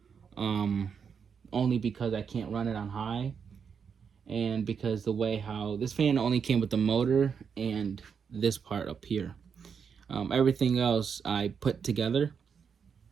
Um, Only because I can't run it on high, and because the way how this fan only came with the motor and this part up here. Everything else I put together,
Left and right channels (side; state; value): left; quieter; 6.6 dB